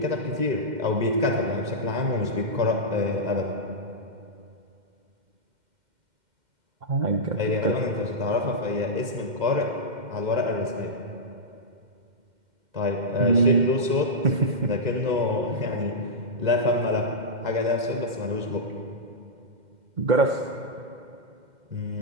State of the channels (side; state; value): left; late; 2.1 ms